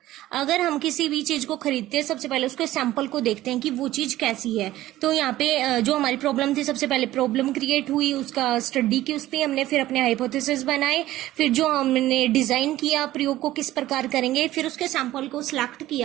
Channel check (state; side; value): quieter; left; 15.2 dB